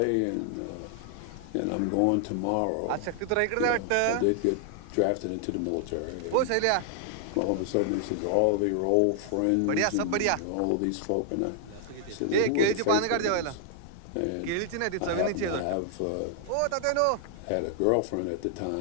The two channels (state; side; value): different; both; correlation -0.01